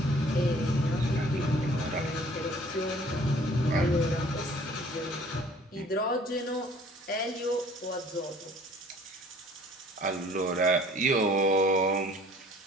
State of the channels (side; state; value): both; normal; correlation 0.53